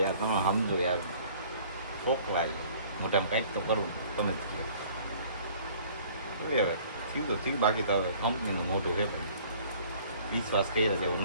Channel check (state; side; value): inverted; both; correlation -0.53